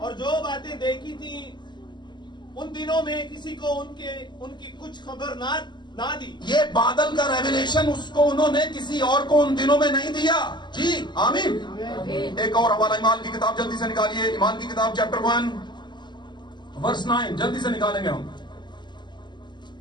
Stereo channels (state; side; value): late; right; 0.21 ms